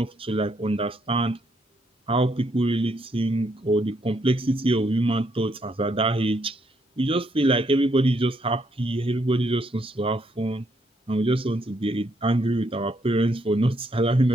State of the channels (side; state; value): both; normal; correlation 0.74